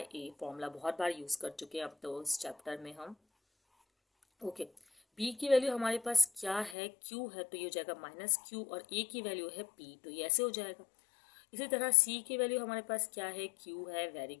ए। फॉर्मूला बहुत बार यूज़ कर चुके हैं अब तो इस चैप्टर में हम। ओके, बी की वैल्यू हमारे पास क्या है, क्यू है, तो ये हो जाएगा माइनस क्यू, और ए की वैल्यू है पी, तो ये ऐसे हो जाएगा। इसी तरह सी की वैल्यू हमारे पास क्या है, क्यू है, वेरी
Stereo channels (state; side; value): drops out; right; at 6.8 s